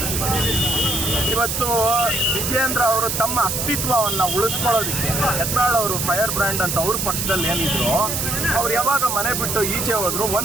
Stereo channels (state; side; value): noise; right; hiss, 1 dB below the sound